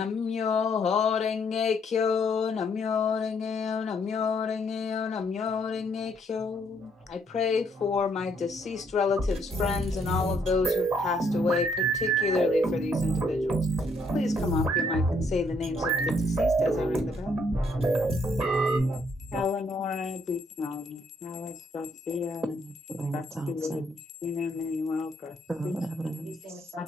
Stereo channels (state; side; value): normal; both; correlation 0.70